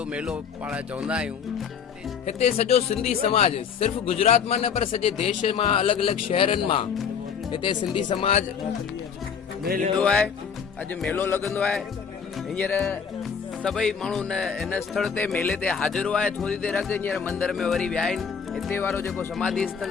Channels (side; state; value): right; quieter; 6.8 dB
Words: मेलो पाण चवंदा आहियूं। हिते सॼो सिंधी समाज सिर्फ़ु गुजरात मां न पर सॼे देश मां अलॻि अलॻि शहरनि मां हिते सिंधी समाज ईंदो आहे। अॼु मेलो लॻंदो आहे। हींअर सभई माण्हू हिन स्थल ते मेले ते हाज़िर आहे। थोरी देरि अॻु हींअर मंदर में वरी विया आहिनि। हिते वारो जेको समाधि स्थल